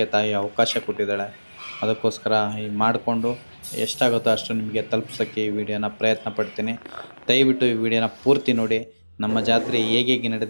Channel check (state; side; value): inverted; both; correlation -1.00